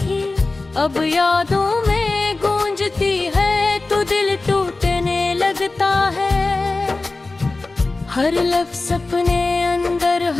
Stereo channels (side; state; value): right; quieter; 3.4 dB